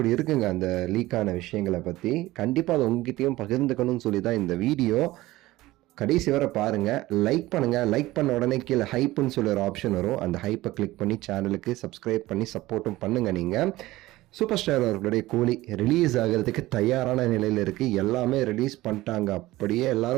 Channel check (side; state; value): left; quieter; 17.8 dB